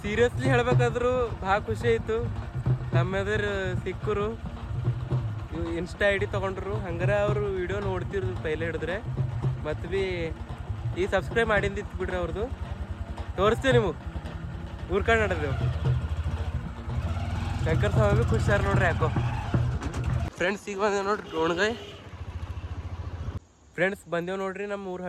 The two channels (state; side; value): identical; both; correlation 1.00